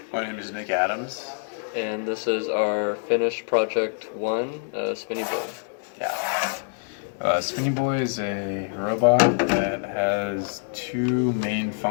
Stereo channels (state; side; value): silent; right; 61 dB below the other